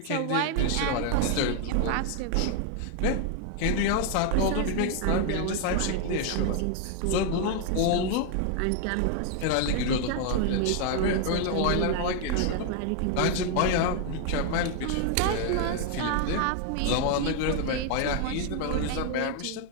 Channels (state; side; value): different; both; correlation 0.00